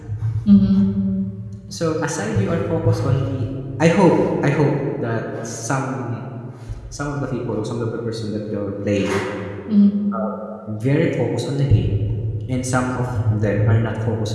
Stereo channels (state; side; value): identical; both; correlation 1.00